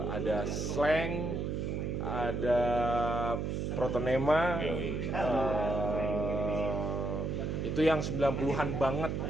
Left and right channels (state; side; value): noise; right; hum, 1 dB below the sound